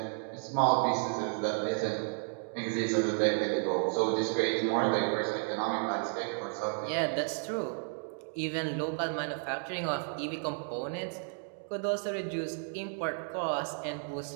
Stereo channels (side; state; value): left; silent; 56 dB below the other